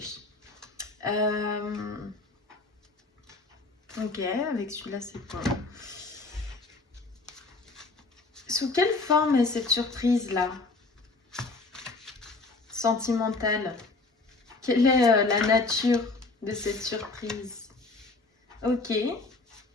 Ok, avec celui-là, c'est quoi? Sous quelle forme est cette surprise-là? Sentimentale. Quelle est la nature de cette surprise? Ok.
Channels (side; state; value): right; quieter; 3.6 dB